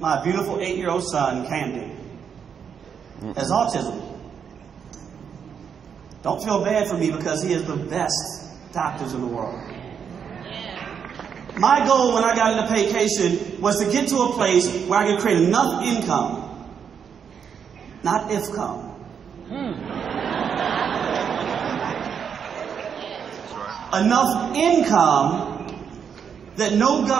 beautiful 8-year-old son, Candy, has autism. Don't feel bad for me because he has the best doctors in the world. My goal when I got into Paycation was to get to a place where I could create enough income, not if-come. Enough income that no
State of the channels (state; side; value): quieter; left; 7.3 dB